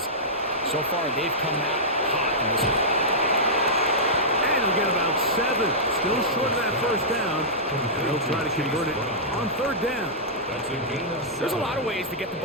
so far they've come out hot in this one. And he'll get about 7. Still short of that first down. And they'll try to convert it on third down. There's a lot of ways to get the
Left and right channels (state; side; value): normal; both; correlation -0.13